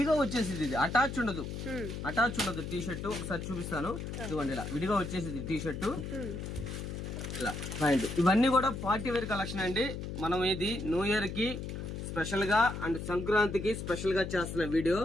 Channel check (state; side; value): noise; left; hum, 6 dB below the sound